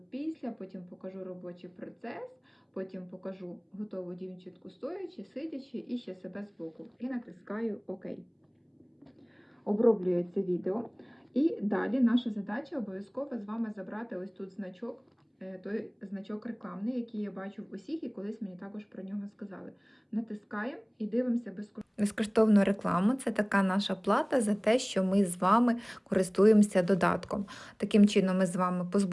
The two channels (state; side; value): identical; both; correlation 1.00